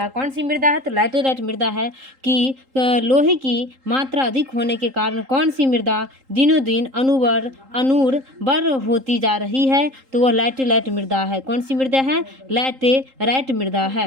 कौन सी मृदा है? तो लैटेराइट मृदा है कि लोहे की मात्रा अधिक होने के कारण कौन सी मृदा दिनों दिन अनूर्बर होती जा रही है? तो वह लैटेराइट मृदा है। कौन सी मृदा है? लैटेराइट मृदा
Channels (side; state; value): left; late; 3.8 ms